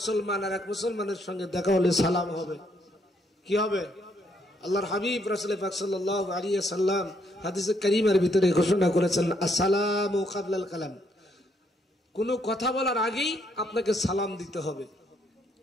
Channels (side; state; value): both; normal; correlation 0.72